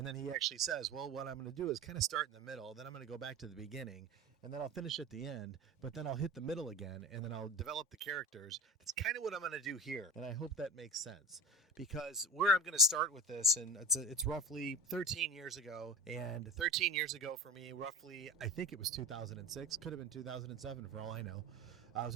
then he actually says, well, what I'm going to do is kind of start in the middle, then I'm going to go back to the beginning, and then I'll finish at the end, but then I'll hit the middle again, and then I'll develop the characters. That's kind of what I'm going to do here, and I hope that makes sense. Because where I'm going to start with this, and it's roughly 13 years ago, and 13 years ago for me, roughly, I think it was 2006, could have been 2007 for all I know. I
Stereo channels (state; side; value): normal; both; correlation 0.30